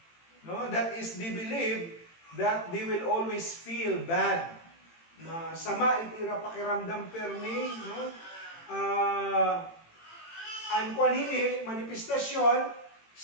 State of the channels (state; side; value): late; right; 18 ms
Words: No? That is, they believe that they will always feel bad. Masama itira pakiramdam permi, no? Ang kwanhini, manifestasyon,